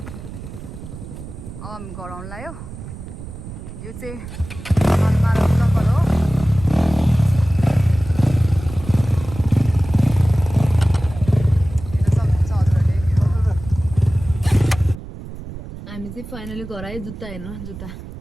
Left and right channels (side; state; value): right; noise; rumble, 12 dB below the sound